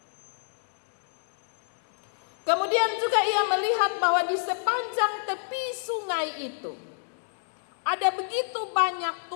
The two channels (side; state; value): right; silent; digital silence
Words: Kemudian juga ia melihat bahwa di sepanjang tepi sungai itu ada begitu banyak